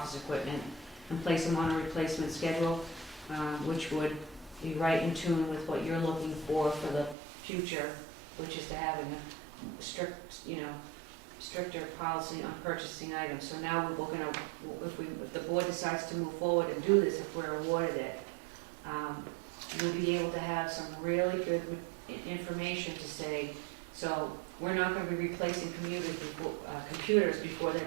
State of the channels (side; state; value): left; drops out; at 7.2 s